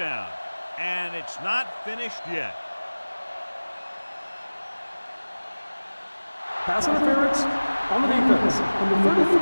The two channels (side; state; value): both; inverted; correlation -1.00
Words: And it's not finished yet. Pass interference on the defense. Number